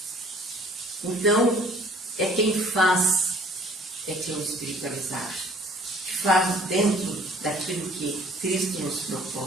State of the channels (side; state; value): both; normal; correlation 0.54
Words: Então, é quem faz, é que é o espiritualizado, que faz dentro daquilo que Cristo nos